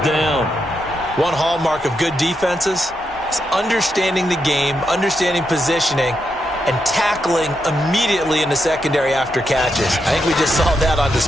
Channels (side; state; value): both; normal; correlation 0.83